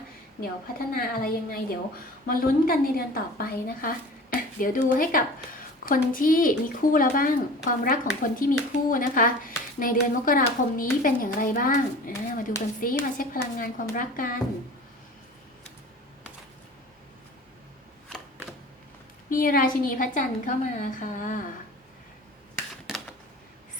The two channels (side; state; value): both; normal; correlation 0.40